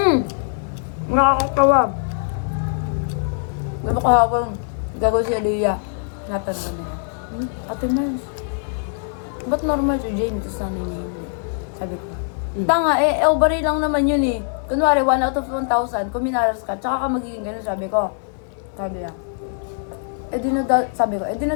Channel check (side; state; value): right; silent; 59 dB below the other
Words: Nakakatawa. Diba kahapon, gagawin si Aliyah. Natanong ko nila. Ate Mars, ba't normal si James? Tapos sana niya hindi. Sabi ko. Tanga, ovary lang naman yun eh. Kunwari, 1 out of 1,000, kung minaras ka, tsaka ka magiging ganun, sabi ko. Sabi niya. Sabi ko,